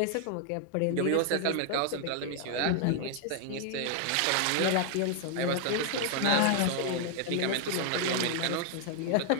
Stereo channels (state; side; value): different; both; correlation 0.00